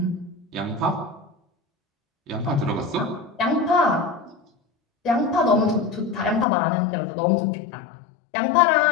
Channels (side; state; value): right; drops out; at 6.5 s